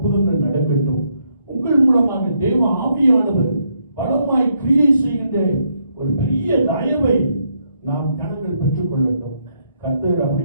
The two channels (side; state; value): both; inverted; correlation -0.75